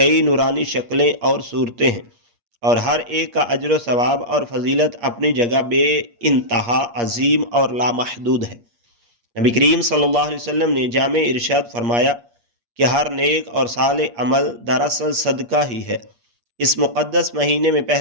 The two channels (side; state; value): left; late; 8.5 ms